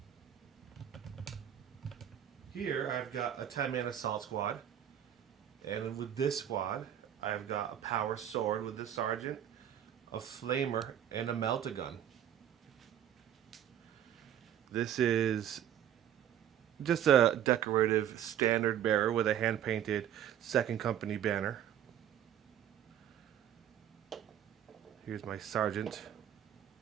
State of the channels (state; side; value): quieter; left; 10.2 dB